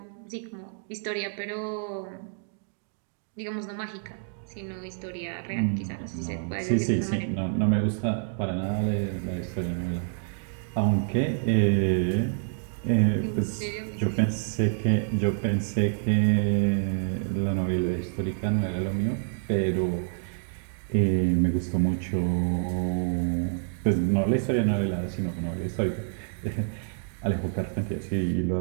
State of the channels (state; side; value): silent; left; digital silence